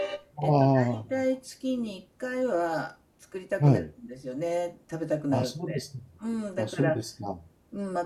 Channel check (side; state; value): both; identical; correlation 1.00